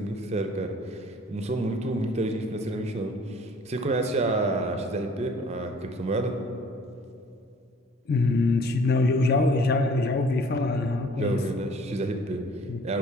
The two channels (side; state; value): both; normal; correlation 0.53